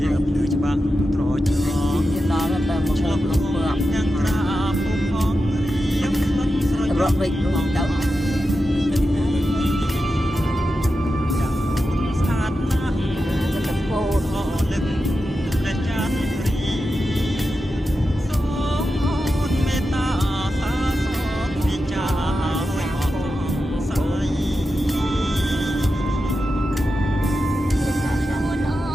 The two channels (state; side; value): normal; both; correlation 0.90